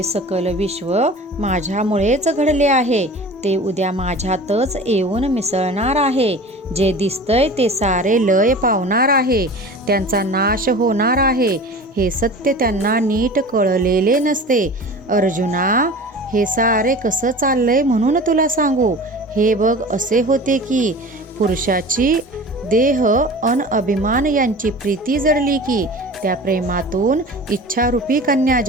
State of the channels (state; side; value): normal; both; correlation 0.38